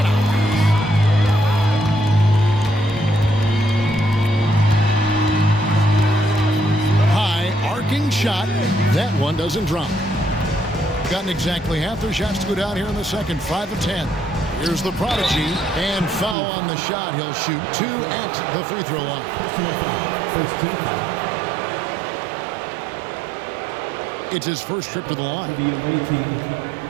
obvious. Arcing shot. That one doesn't drop. Gotten exactly half their shots to go down here in the second. 5 of 10. Here's the prodigy. And foul on the shot. He'll shoot 2 at the free throw line. It's his first trip to the line. The away team,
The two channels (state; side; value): drops out; left; at 16.4 s